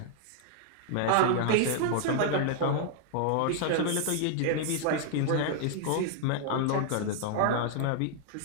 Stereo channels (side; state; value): both; different; correlation -0.01